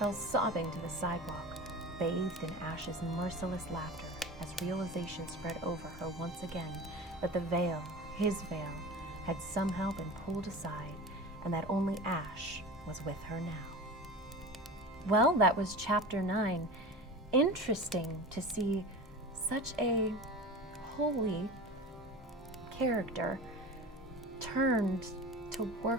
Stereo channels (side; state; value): both; normal; correlation 0.32